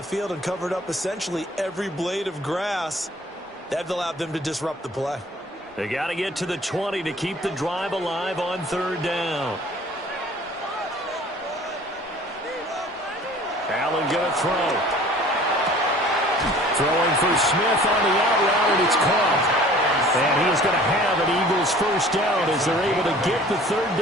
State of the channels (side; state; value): both; normal; correlation 0.49